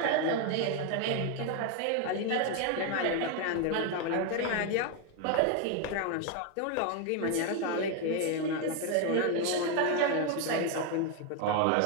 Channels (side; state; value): both; different; correlation 0.01